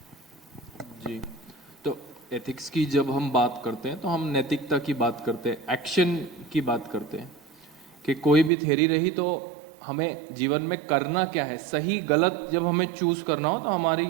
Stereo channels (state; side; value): drops out; left; at 8.5 s